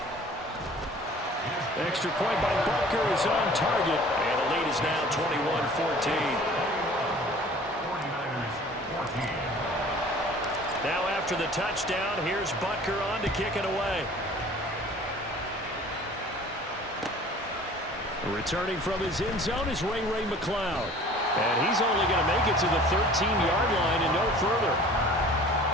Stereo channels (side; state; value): both; normal; correlation 0.48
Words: Extra point by Butker is on target. And the lead is now 21-14. 49ers 14. Now after the touchdown, here's Butker on to kick it away. Returning from his end zone is Ray McCloud. And he's only going to make it to the 13-yard line and no further.